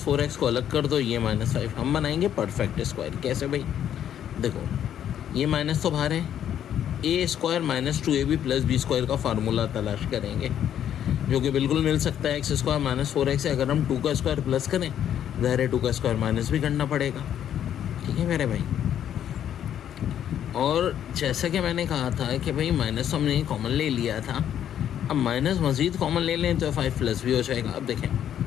4x को अलग कर दो, ये -5। हम बनाएंगे परफेक्ट स्क्वायर। कैसे भाई, देखो ये माइनस तो बाहर है, a square minus 2ab plus b square का फार्मूला तलाश करेंगे, जो कि बिल्कुल मिल सकता है। एक्स स्क्वायर माइनस 4x है, अगर हम 2 का स्क्वायर प्लस करें, ज़ाहिर है 2 का स्क्वायर माइनस भी करना पड़ेगा। ठीक है मेरे भाई, और जैसा कि मैंने कहा था कि भाई माइनस तो हमने कॉमन ले लिया था, अब माइनस मज़ीद कॉमन ले लें तो 5 प्लस भी हो जाएगा। अब देखें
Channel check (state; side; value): quieter; right; 10.1 dB